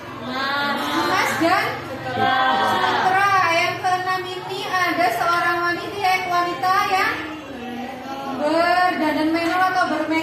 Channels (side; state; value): both; identical; correlation 1.00